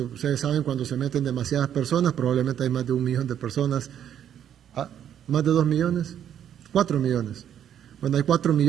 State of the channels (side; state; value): left; quieter; 9.8 dB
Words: ustedes saben, cuando se meten demasiadas personas, probablemente hay más de 1 millón de personas, más de 2 millones, 4 millones. Bueno, hay 4